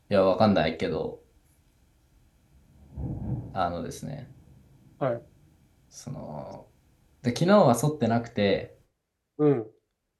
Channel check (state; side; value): identical; both; correlation 1.00